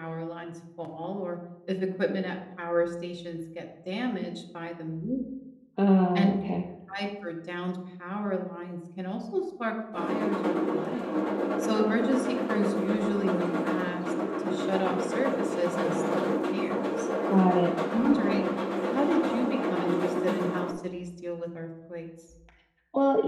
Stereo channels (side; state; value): both; identical; correlation 1.00